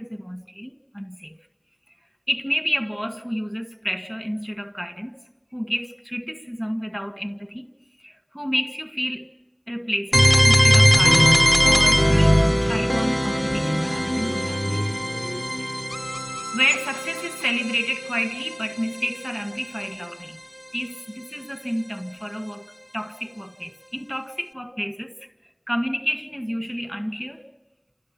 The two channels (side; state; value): both; identical; correlation 1.00